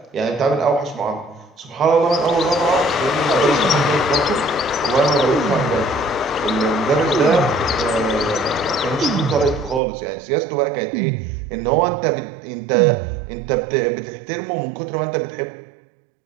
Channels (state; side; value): drops out; left; at 9.8 s